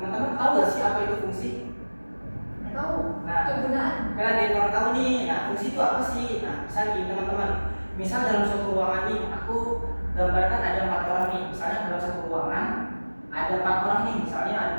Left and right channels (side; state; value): both; inverted; correlation -1.00